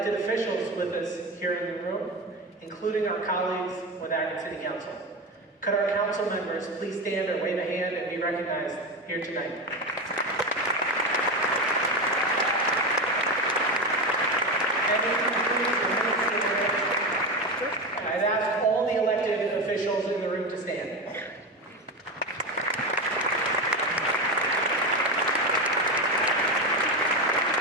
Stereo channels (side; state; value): both; normal; correlation 0.19